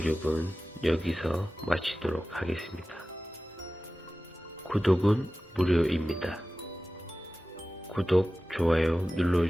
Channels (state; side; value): normal; both; correlation 0.95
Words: 여기서 마치도록 하겠습니다. 구독은 무료입니다. 구독, 좋아요